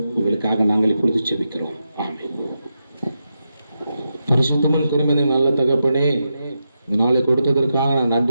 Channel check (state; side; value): inverted; both; correlation -0.87